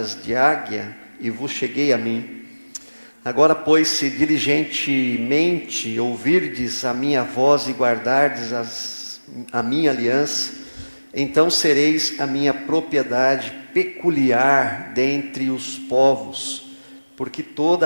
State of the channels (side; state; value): both; inverted; correlation -1.00